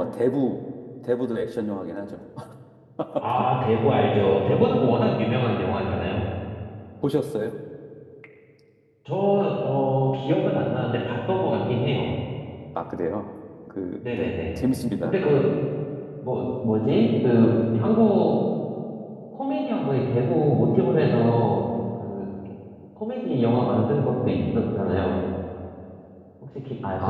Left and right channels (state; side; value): identical; both; correlation 1.00